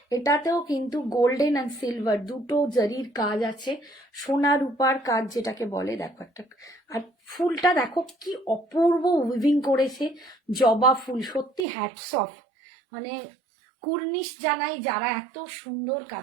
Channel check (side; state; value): left; drops out; at 11.7 s